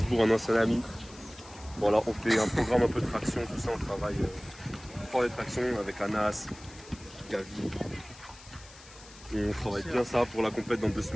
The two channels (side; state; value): left; noise; hiss, 20 dB below the sound